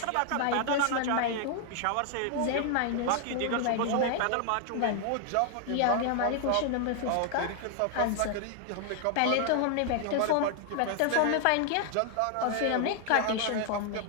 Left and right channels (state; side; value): different; both; correlation 0.00